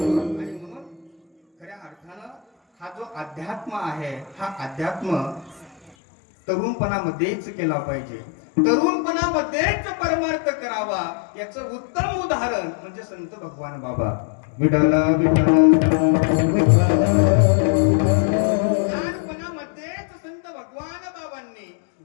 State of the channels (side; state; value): right; drops out; at 5.9 s